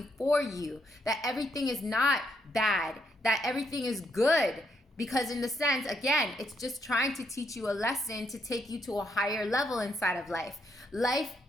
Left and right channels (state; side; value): normal; both; correlation 0.76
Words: for you, that everything is not bad, that everything is good. Because in the sense, again, it's just trying to teach you a lesson to take you to a higher level inside of life. Life,